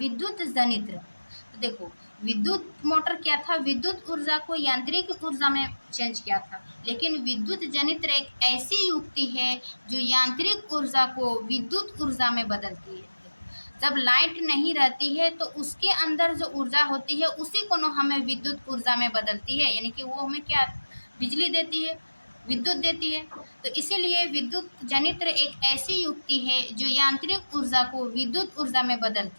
जनित्र। तो देखो, विद्युत मोटर क्या था, विद्युत ऊर्जा को यांत्रिक ऊर्जा में चेंज किया था। लेकिन विद्युत जनित्र एक ऐसी युक्ति है जो यांत्रिक ऊर्जा को विद्युत ऊर्जा में बदलती है। जब लाइट नहीं रहती है तो उसके अंदर जो ऊर्जा होती है उसी को हमें विद्युत ऊर्जा में बदलती है, यानी कि वो हमें क्या बिजली देती है, विद्युत देती है। तो इसीलिए विद्युत जनित्र एक ऐसी युक्ति है जो यांत्रिक ऊर्जा को विद्युत ऊर्जा में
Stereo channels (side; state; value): both; inverted; correlation -1.00